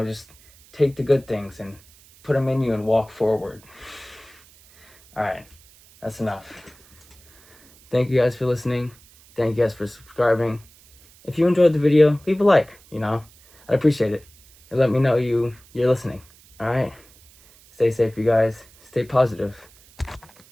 just take the good things and put them in you and walk forward. All right, that's enough. Thank you guys for listening. Thank you guys for subscribing. If you enjoyed the video, leave a like, you know. I'd appreciate it. And let me know you're listening. All right? Stay safe, you guys. Stay positive.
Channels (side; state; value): right; noise; hiss, 27 dB below the sound